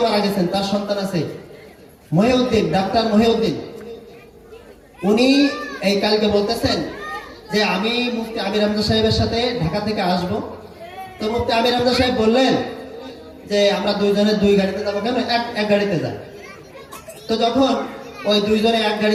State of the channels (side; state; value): both; identical; correlation 1.00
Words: মারা গেছেন, তার সন্তান আছে মহিউদ্দিন, ডাক্তার মহিউদ্দিন। উনি এই কালকে বলতেছেন যে আমি মুফতি আমির হামজা সাহেবের সাথে ঢাকা থেকে আসব। তো মুফতি আমির হামজা সাহেব বললেন যে আমরা দুইজনে 2 গাড়িতে যাবো, কেন এক গাড়িতে যাই। তো যখন ওই দুইজনে এক